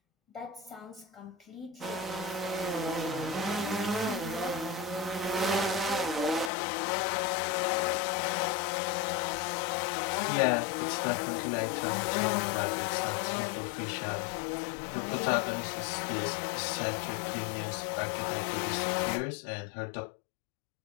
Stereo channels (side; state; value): right; drops out; at 6.5 s